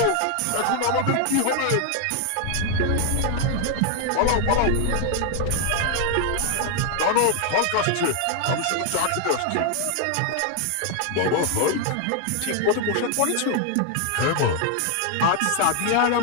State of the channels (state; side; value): different; both; correlation 0.00